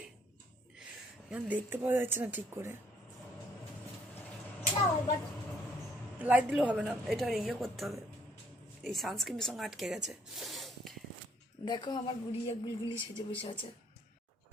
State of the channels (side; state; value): both; normal; correlation 0.66